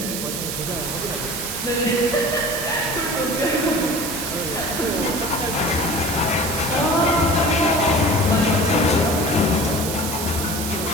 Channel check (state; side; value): noise; right; hiss, 5 dB below the sound